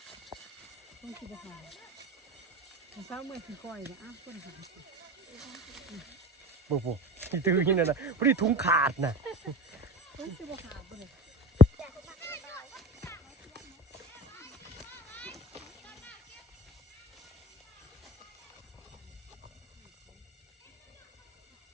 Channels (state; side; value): normal; both; correlation 0.32